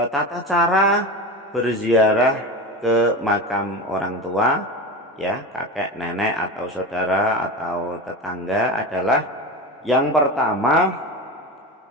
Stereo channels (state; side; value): normal; both; correlation 0.25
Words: cara berziarah ke makam orang tua, ya, kakek, nenek atau saudara atau tetangga adalah yang pertama,